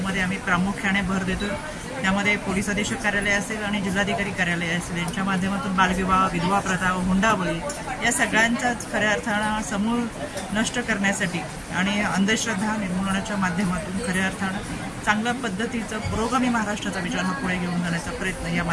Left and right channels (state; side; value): identical; both; correlation 1.00